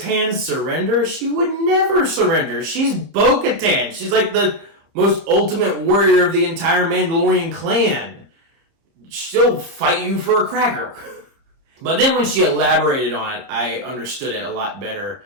surrender? She would never surrender. She's Bo-Katan. She's like the most ultimate warrior of the entire Mandalorian clan. She'll fight you for a cracker. But then when she elaborated on it, I understood it a lot better.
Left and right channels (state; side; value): late; left; 30 ms